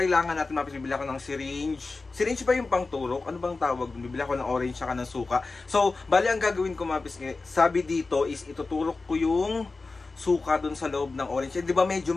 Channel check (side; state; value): right; quieter; 3.8 dB